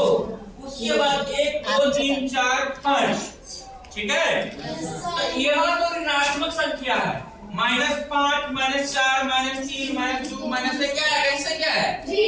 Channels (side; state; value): both; identical; correlation 1.00